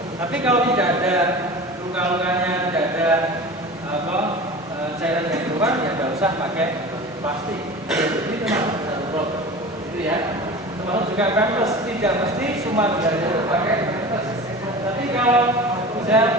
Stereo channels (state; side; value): normal; both; correlation 0.35